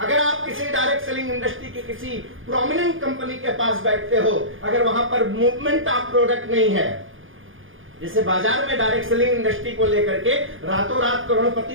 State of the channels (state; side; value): late; left; 0.58 ms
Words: आप किसी डायरेक्ट सेलिंग इंडस्ट्री की किसी प्रोमिनेंट कंपनी के पास बैठते हो, अगर वहां पर मूवमेंट ऑफ प्रोडक्ट नहीं है, जैसे बाजार में डायरेक्ट सेलिंग इंडस्ट्री को लेकर के रातों रात